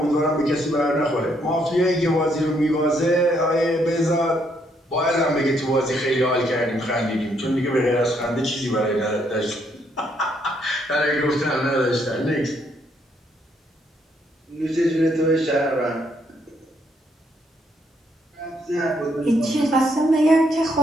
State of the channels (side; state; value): both; normal; correlation 0.72